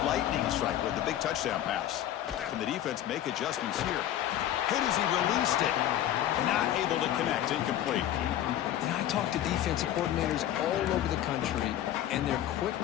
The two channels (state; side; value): quieter; right; 12.0 dB